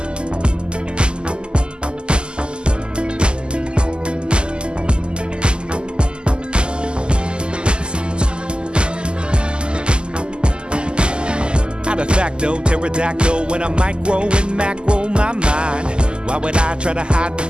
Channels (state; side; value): late; left; 0.049 ms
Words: De facto, pterodactyl when I micro and macro my mind. Why would I try to hide the